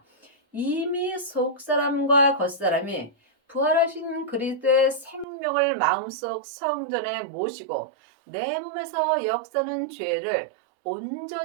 이미 속사람과 겉사람이 부활하신 그리스도의 생명을 마음속 성전에 모시고 내 몸에서 역사는 죄를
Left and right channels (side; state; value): left; drops out; at 5.2 s